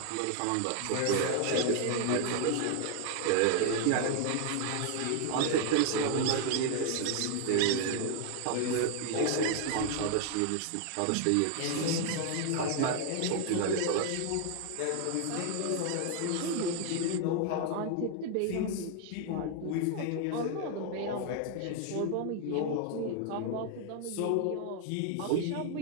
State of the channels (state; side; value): different; both; correlation 0.00